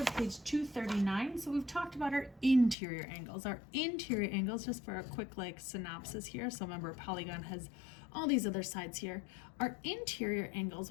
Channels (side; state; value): right; drops out; at 2.8 s